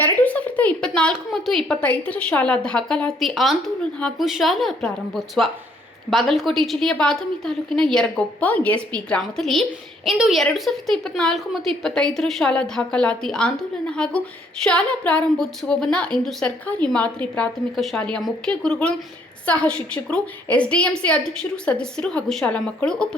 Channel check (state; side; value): normal; both; correlation 0.66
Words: ಮತ್ತು 25ರ ಶಾಲಾ ದಾಖಲಾತಿ ಆಂದೋಲನ ಹಾಗೂ ಶಾಲಾ ಪ್ರಾರಂಭೋತ್ಸವ. ಬಾಗಲಕೋಟೆ ಜಿಲ್ಲೆಯ ಬಾದಾಮಿ ತಾಲೂಕಿನ ಯರಗೊಪ್ಪ ಎಸ್ಪಿ ಗ್ರಾಮದಲ್ಲಿ ಇಂದು 2024 ಮತ್ತು 25ರ ಶಾಲಾ ದಾಖಲಾತಿ ಆಂದೋಲನ ಹಾಗೂ ಶಾಲಾ ಪ್ರಾರಂಭೋತ್ಸವವನ್ನು ಇಂದು ಸರ್ಕಾರಿ ಮಾದರಿ ಪ್ರಾಥಮಿಕ ಶಾಲೆಯ ಮುಖ್ಯ ಗುರುಗಳು, ಸಹ ಶಿಕ್ಷಕರು, ಎಸ್ಡಿಎಂಸಿ ಅಧ್ಯಕ್ಷರು, ಸದಸ್ಯರು ಹಾಗೂ ಶಾಲಾ ಮಕ್ಕಳು